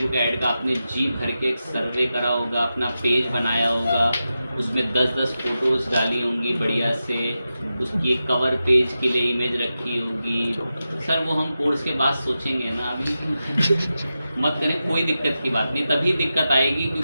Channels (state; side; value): inverted; both; correlation -0.91